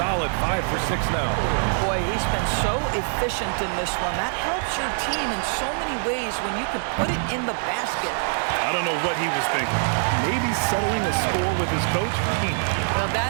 5 for 6 now. Boy, he's been so efficient in this one. That helps your team in so many ways when you can put it in the basket. I don't know what he was thinking. Maybe settling a score with his coach? Well,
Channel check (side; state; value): left; silent; digital silence